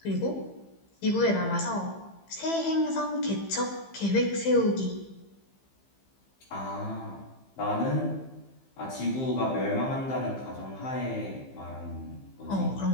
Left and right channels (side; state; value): right; late; 15 ms